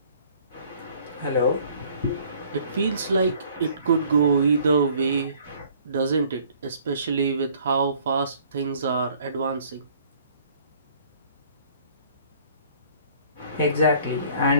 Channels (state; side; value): inverted; both; correlation -0.56